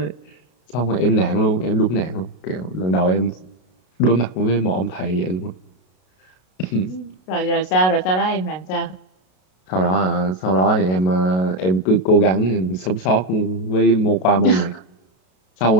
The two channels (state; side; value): late; right; 32 ms